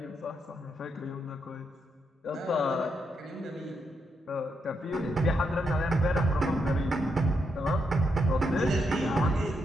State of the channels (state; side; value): normal; both; correlation 0.81